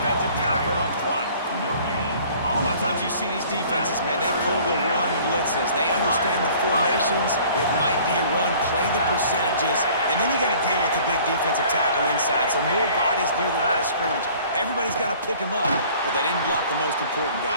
tackle up front. A lot of times you see these defenses, man, they pull the run blitzes. They understand the formations. It might be a run, play the percentages, and then you got to deal with the big defensive tackle inside. So more bodies near the line of scrimmage. Everybody's got to pick him up, but they didn't block the most important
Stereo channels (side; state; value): both; inverted; correlation -0.52